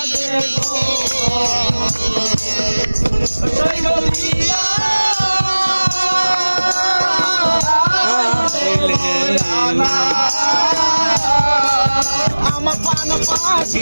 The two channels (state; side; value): inverted; both; correlation -1.00